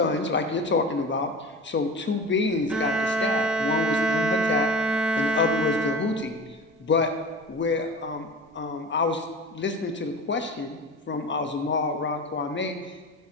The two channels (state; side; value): normal; both; correlation 0.34